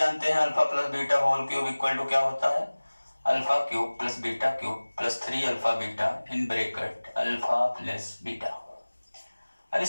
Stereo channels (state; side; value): inverted; both; correlation -1.00